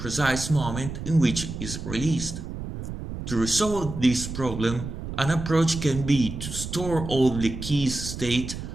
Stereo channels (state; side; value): noise; right; rumble, 7 dB below the sound